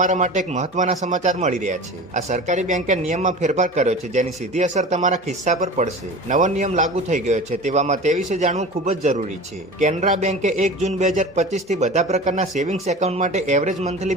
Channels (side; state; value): both; normal; correlation 0.35